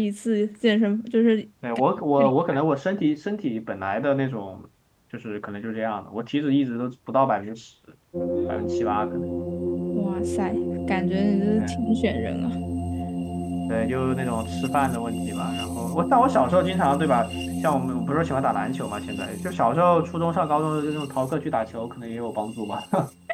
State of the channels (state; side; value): identical; both; correlation 1.00